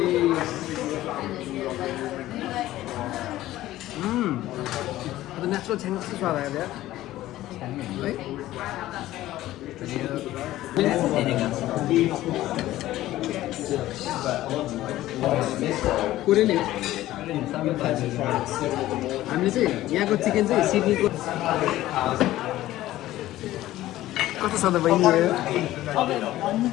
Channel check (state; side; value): quieter; right; 15.2 dB